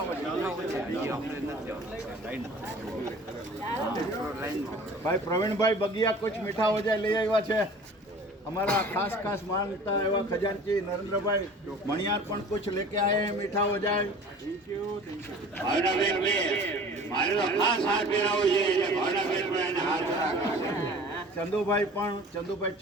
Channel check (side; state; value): both; normal; correlation 0.44